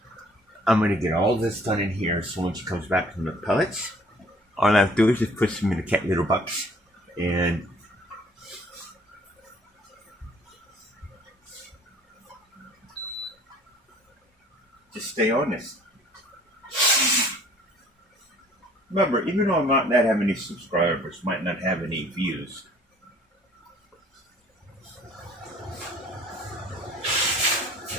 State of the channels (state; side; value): normal; both; correlation 0.55